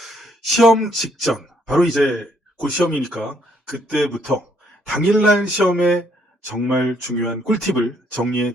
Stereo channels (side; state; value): both; normal; correlation 0.68